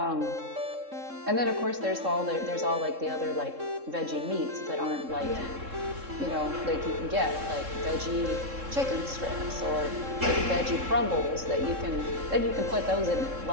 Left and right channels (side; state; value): left; late; 3.7 ms